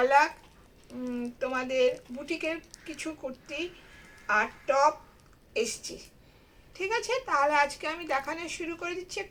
তোমাদের বুটিকের কিছু কুর্তি আর টপ এসছি। ঠিক আছে, তাহলে আজকে আমি দেখানো শুরু করে দিচ্ছি,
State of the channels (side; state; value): both; identical; correlation 1.00